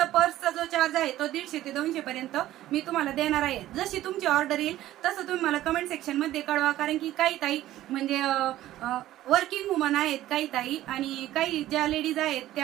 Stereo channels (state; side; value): quieter; left; 14.3 dB